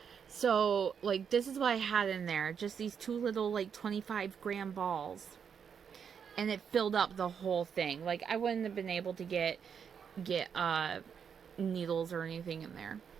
So, like, this is what I had in there. Just these 2 little, like, 25-gram balls. And it filled up the whole thing. Like, I wouldn't have been able to get needles or anything in there.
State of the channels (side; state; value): left; quieter; 7.2 dB